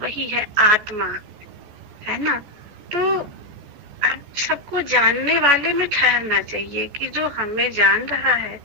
है आत्मा, है ना? तो अब सबको जानने वाले में ठहरना चाहिए कि जो हमें जान रहा है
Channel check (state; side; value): late; left; 14 ms